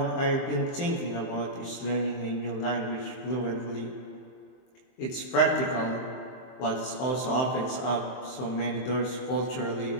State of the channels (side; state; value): right; late; 23 ms